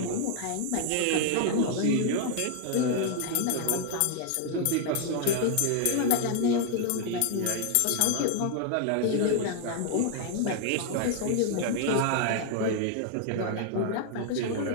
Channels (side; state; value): both; different; correlation 0.00